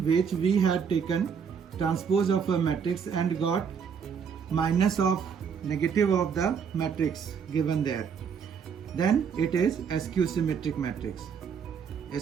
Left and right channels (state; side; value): quieter; left; 6.8 dB